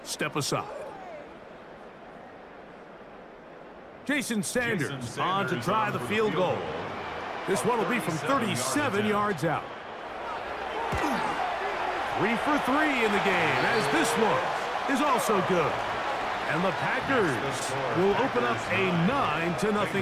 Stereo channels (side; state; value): both; identical; correlation 1.00